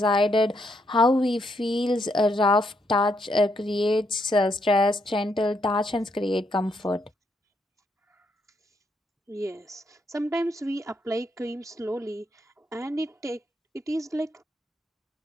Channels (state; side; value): normal; both; correlation 0.76